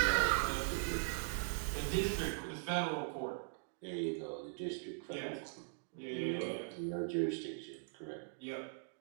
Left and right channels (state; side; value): silent; left; digital silence